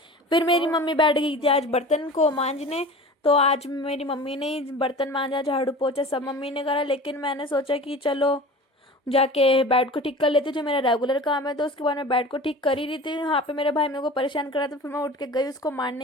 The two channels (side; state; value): both; normal; correlation 0.38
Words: फिर मेरी मम्मी बैठ गई थी आज बर्तन को मांजने। तो आज मेरी मम्मी ने ही बर्तन मांजा, झाड़ू पोछा सब मम्मी ने करा, लेकिन मैंने सोचा कि चलो जाके बेड को ठीक कर लेती हूँ, जो मेरा रेगुलर काम है। तो उसके बाद मैं बेड को ठीक कर ही रही थी, वहाँ पे मेरे भाई मेरे को परेशान कर रहा था। फिर मैं उठ के गई उसको